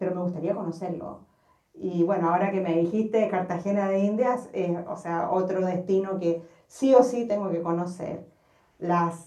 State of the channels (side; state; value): both; identical; correlation 1.00